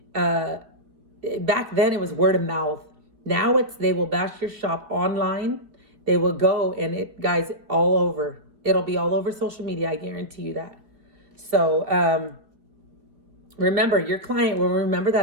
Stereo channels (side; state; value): left; late; 2.6 ms